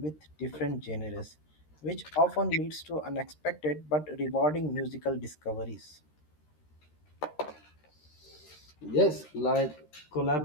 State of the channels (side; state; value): right; late; 13 ms